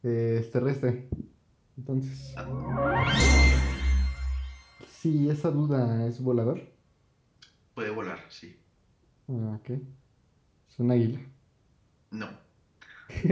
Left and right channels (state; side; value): identical; both; correlation 1.00